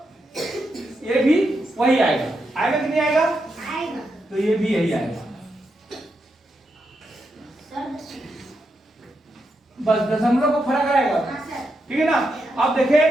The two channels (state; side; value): normal; both; correlation 0.84